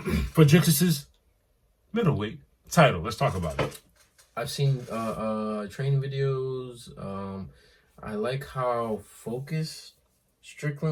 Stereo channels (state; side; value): identical; both; correlation 1.00